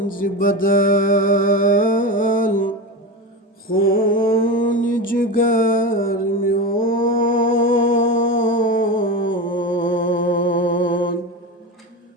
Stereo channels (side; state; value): both; normal; correlation 0.22